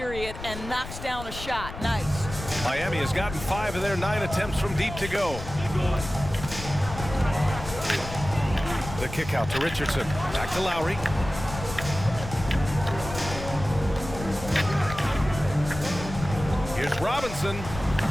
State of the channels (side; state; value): left; noise; rumble, 10 dB below the sound